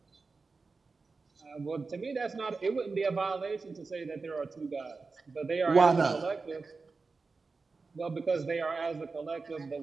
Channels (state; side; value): quieter; left; 4.2 dB